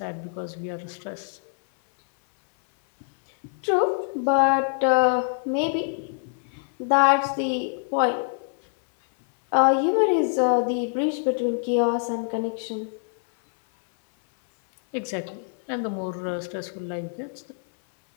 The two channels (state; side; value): silent; right; 59 dB below the other